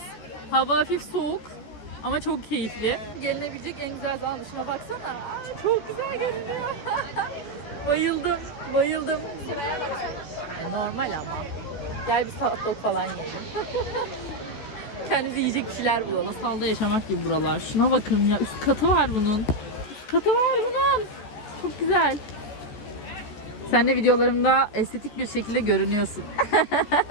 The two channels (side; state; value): right; late; 14 ms